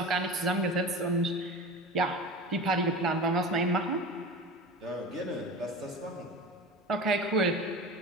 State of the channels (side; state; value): both; normal; correlation 0.31